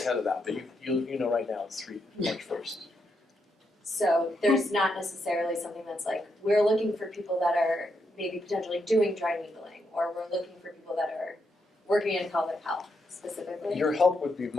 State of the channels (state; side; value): normal; both; correlation 0.81